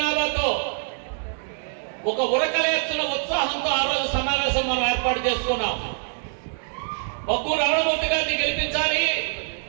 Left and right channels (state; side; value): silent; left; digital silence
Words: ఒక ఉరకలేస్తున్న ఉత్సాహంతో ఆ రోజు సమావేశం మనం ఏర్పాటు చేసుకున్నాం. బగ్గు రమణమూర్తి గారిని గెలిపించాలి,